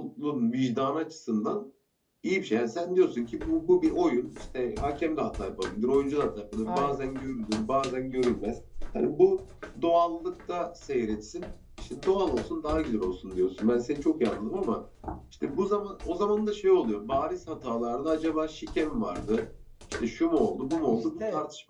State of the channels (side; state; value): both; identical; correlation 1.00